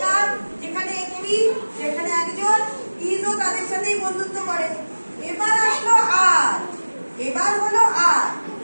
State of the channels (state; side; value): inverted; both; correlation -1.00